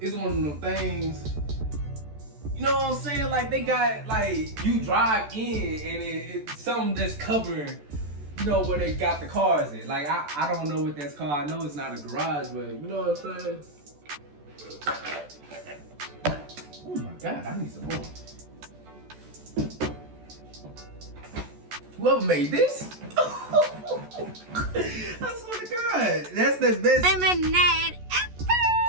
one of them things, you know what I'm saying? Like they got, like you drive in and it's something that's covering, you know, where they got the cars in. Like I don't know what that's called. I know it's not a garage, but you know what I'm saying? Oh my God, I need some more. Whoever made this? I swear to God, that's the best lemonade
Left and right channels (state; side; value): late; left; 14 ms